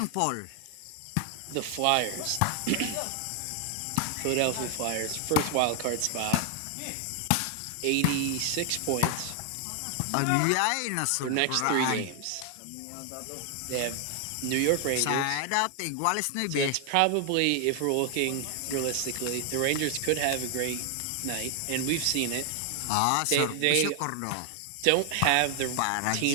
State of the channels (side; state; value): both; different; correlation 0.00